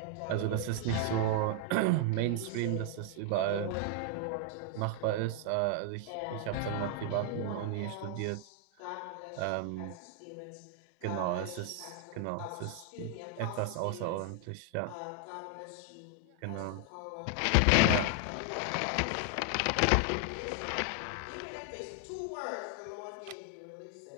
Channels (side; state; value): both; different; correlation 0.00